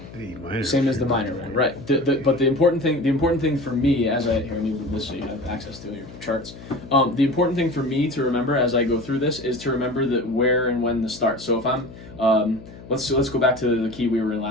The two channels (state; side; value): noise; left; hum, 17 dB below the sound